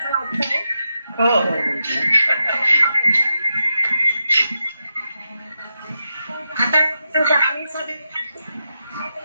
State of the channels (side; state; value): both; inverted; correlation -0.88